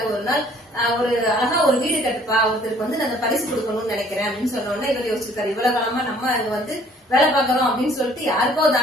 ஒரு நாள் ஒரு அழகா ஒரு வீடு கட்டுப்பா, ஒருத்தருக்கு வந்து நான் பரிசு கொடுக்கணும்னு நினைக்கிறேன் அப்படின்னு சொன்ன உடனே இவர் யோசிச்சிருக்காரு, இவ்வளவு காலமா நம்ம அங்க வந்து வேலை பார்க்கறோம் அப்படின்னு சொல்லிட்டு யாருக்கோ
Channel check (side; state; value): both; normal; correlation 0.57